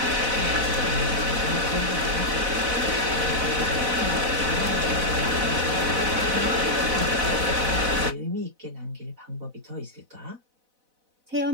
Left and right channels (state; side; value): late; left; 4.0 ms